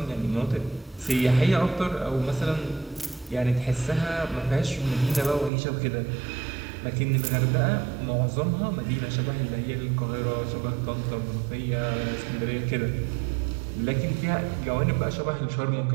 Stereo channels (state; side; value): drops out; left; at 5.5 s